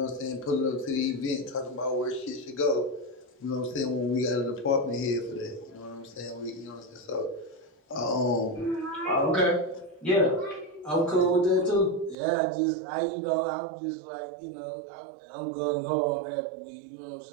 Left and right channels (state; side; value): drops out; left; at 12.2 s